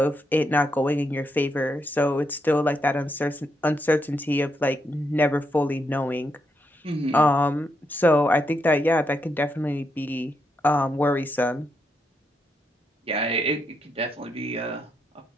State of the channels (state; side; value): normal; both; correlation 0.80